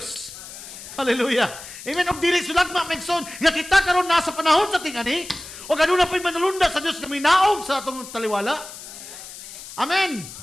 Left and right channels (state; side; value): noise; left; hiss, 14 dB below the sound